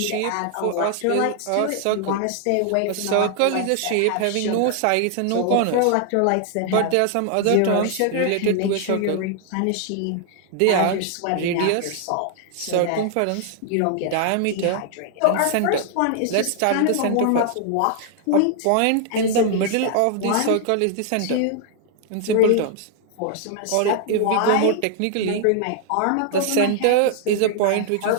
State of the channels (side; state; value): both; different; correlation 0.00